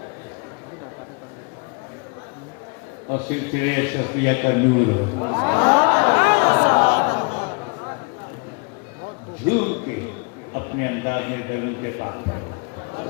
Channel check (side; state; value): right; quieter; 31.8 dB